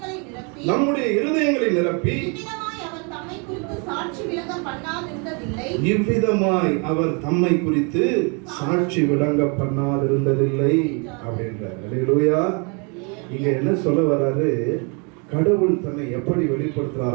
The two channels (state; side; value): quieter; left; 34.2 dB